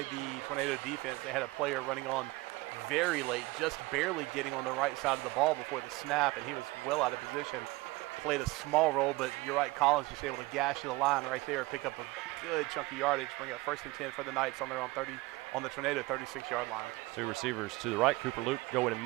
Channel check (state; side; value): quieter; left; 21.8 dB